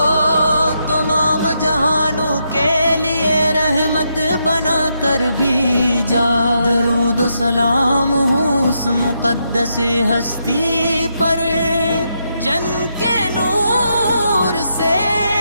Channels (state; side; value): inverted; both; correlation -0.81